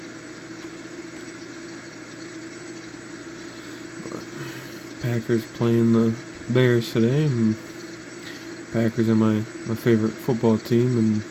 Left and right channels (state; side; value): identical; both; correlation 1.00